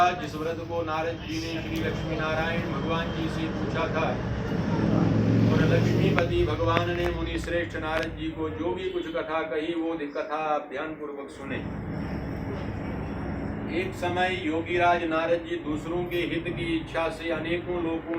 जिस व्रत को नारद जी ने श्री लक्ष्मी नारायण भगवान जी से पूछा था, और लक्ष्मीपति भगवान ने मुनि श्रेष्ठ नारद जी को जो भी कुछ कथा कही वो कथा आप ध्यान पूर्वक सुने। एक समय योगीराज नारद जी दूसरों के हित की इच्छा से अनेकों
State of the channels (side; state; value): both; identical; correlation 1.00